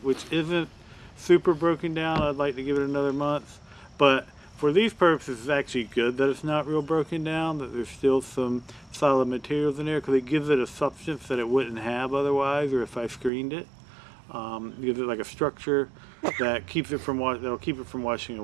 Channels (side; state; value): left; drops out; at 13.3 s